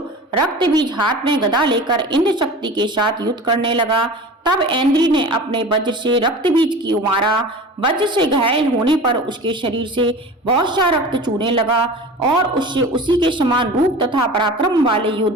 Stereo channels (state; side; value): normal; both; correlation 0.36